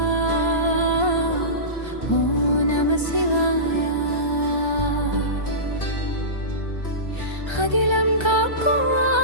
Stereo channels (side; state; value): right; late; 1.3 ms